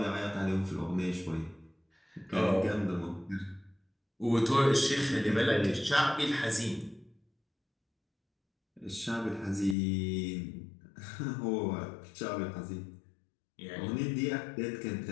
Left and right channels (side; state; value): right; drops out; at 9.8 s